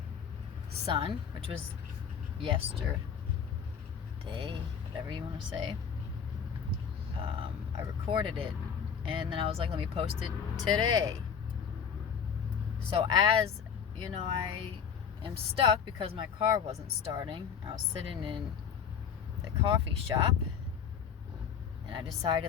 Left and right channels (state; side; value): quieter; right; 7.3 dB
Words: sun, which was yesterday, whatever you want to say, I recorded it, and then I was like, let me post it today. So as you know, I am stuck because my car wasn't starting. I was sitting in the coffee shop, and I